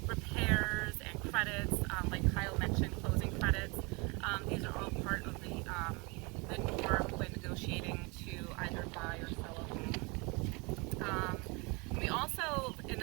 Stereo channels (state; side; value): quieter; left; 29.0 dB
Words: repairs and credits, like Kyle mentioned, closing credits. These are all part of the norm when negotiating to either buy or sell a home. We also, in